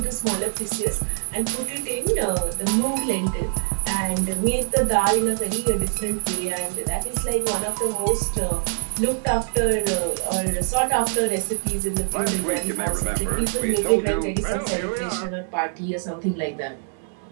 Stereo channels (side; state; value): left; silent; 61 dB below the other